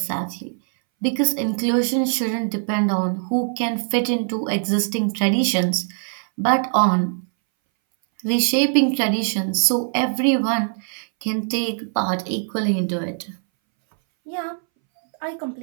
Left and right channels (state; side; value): silent; left; 62 dB below the other